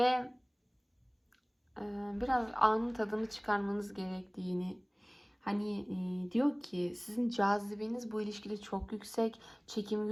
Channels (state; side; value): identical; both; correlation 1.00